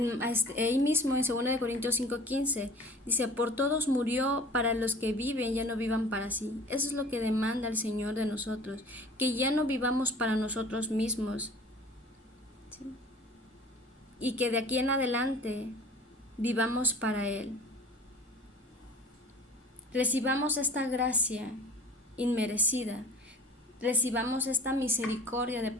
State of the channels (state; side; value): normal; both; correlation 0.44